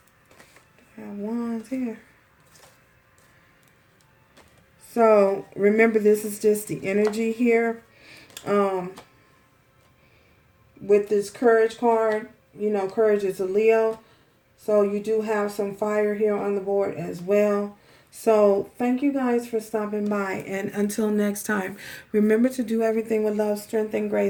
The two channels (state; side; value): identical; both; correlation 1.00